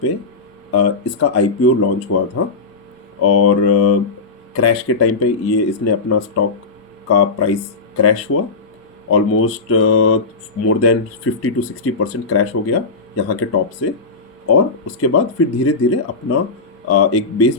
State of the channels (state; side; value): quieter; right; 4.0 dB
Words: पे इसका आईपीओ लॉन्च हुआ था और क्रैश के टाइम पे ये इसने अपना स्टॉक का प्राइस क्रैश हुआ। ऑलमोस्ट मोर देन 50-60% क्रैश हो गया यहाँ के टॉप से। और उसके बाद फिर धीरे धीरे अपना एक बेस